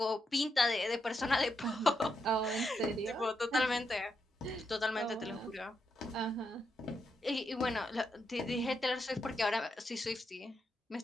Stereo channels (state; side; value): normal; both; correlation 0.82